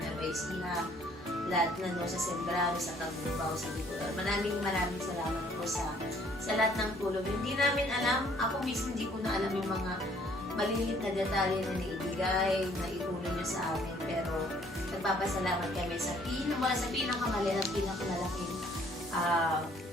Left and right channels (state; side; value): normal; both; correlation 0.61